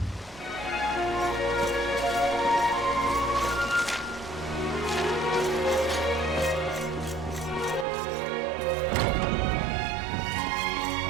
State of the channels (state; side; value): drops out; left; at 7.9 s